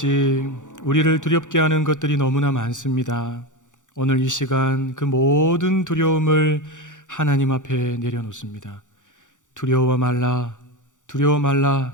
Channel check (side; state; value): right; late; 0.86 ms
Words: 우리를 두렵게 하는 것들이 너무나 많습니다. 오늘 이 시간 그 모든 두려움을 하나님 앞에 내려놓습니다. 두려워 말라